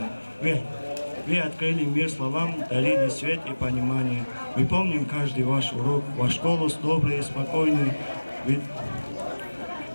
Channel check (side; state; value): both; inverted; correlation -1.00